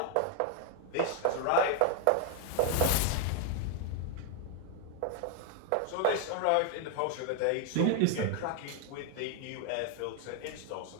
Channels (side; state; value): both; different; correlation 0.00